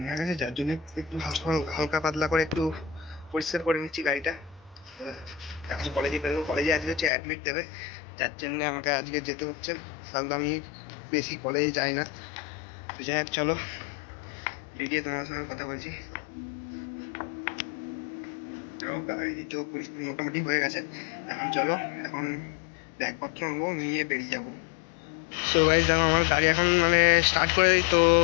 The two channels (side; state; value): right; drops out; at 7.1 s